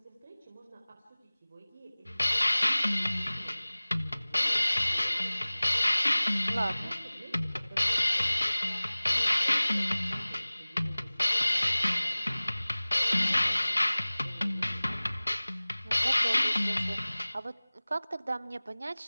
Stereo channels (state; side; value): inverted; both; correlation -0.99